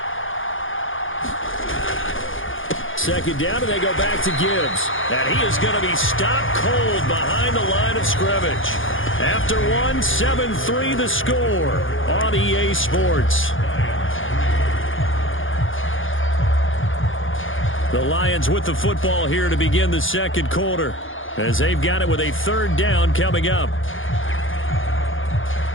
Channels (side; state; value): right; late; 0.58 ms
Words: 2nd down, and they go back to Gibbs. And he is going to be stopped cold behind the line of scrimmage. After 7-3 the score on EA Sports. The Lions with the football here to begin the 2nd quarter, as they've got it with a 3rd down coming up.